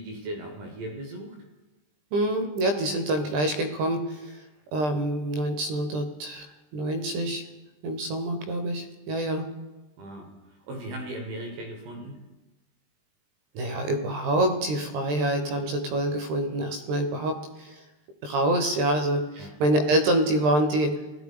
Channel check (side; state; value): left; late; 20 ms